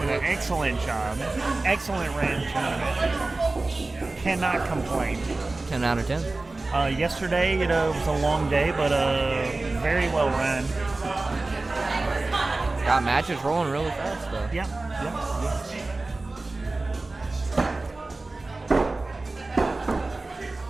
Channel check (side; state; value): left; quieter; 3.2 dB